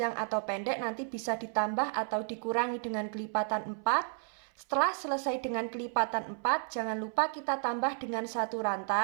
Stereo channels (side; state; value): left; silent; 56 dB below the other